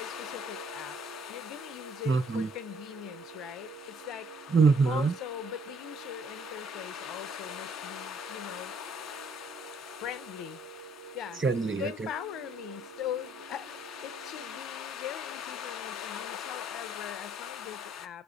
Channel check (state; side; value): normal; both; correlation 0.64